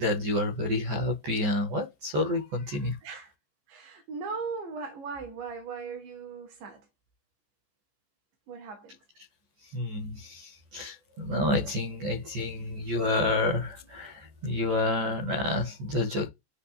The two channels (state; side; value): late; left; 14 ms